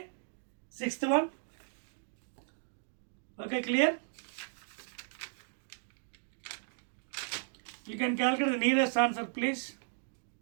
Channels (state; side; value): silent; left; digital silence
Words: sixth one. Okay, clear. You can calculate the nearest answer please.